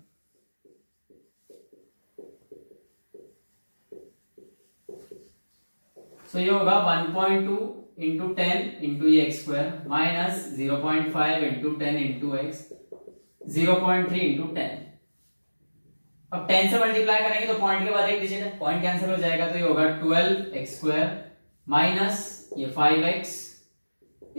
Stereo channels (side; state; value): both; inverted; correlation -1.00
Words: सो ये होगा 1.2 इंटू 10 इंटू ये x square minus 0.5 into 10 into x 0.3 into 10। अब 10 से मल्टीप्लाई करेंगे तो पॉइंट के बाद एक डिजिट है, पॉइंट कैंसिल हो जाएगा तो ये होगा 12x स्क्वायर माइनस ये 5x